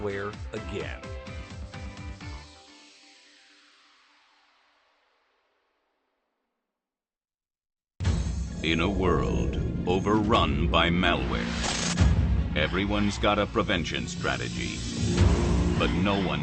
again. In a world overrun by malware, everyone's got a prevention strategy, but no one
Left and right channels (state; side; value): identical; both; correlation 1.00